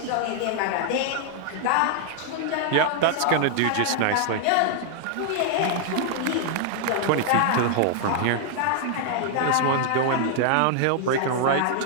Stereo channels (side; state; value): both; different; correlation 0.00